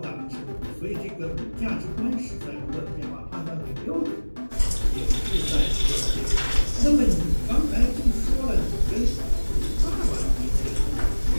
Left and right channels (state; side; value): inverted; both; correlation -1.00